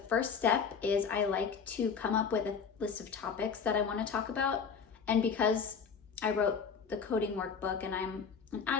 first step is I like to come up with a list of topics that I want to talk about. And because I wrote the Coding Workbook and I'm an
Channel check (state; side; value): quieter; right; 6.1 dB